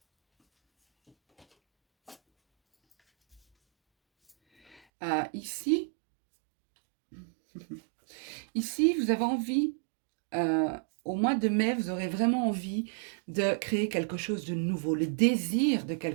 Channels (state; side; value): drops out; left; at 4.8 s